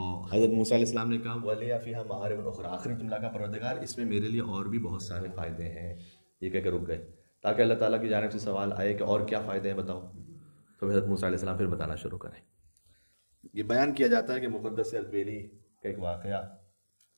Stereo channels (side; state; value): both; inverted; correlation -1.00